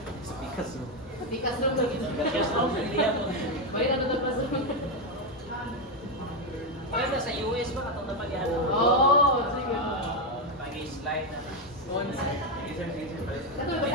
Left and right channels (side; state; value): both; normal; correlation 0.07